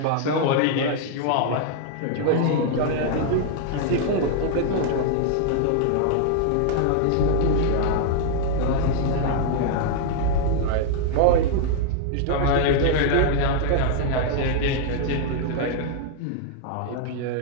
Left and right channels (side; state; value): both; different; correlation 0.00